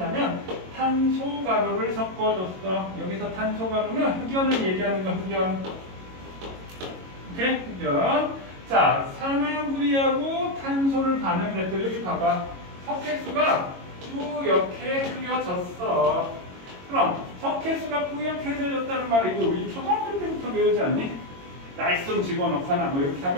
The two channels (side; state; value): left; late; 22 ms